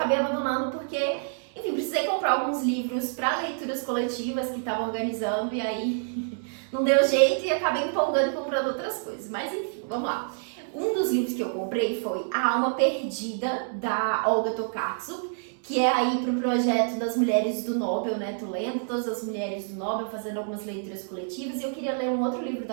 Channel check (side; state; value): left; silent; 60 dB below the other